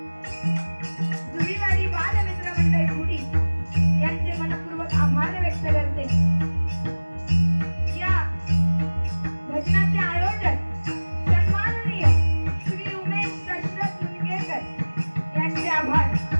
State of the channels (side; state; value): both; inverted; correlation -1.00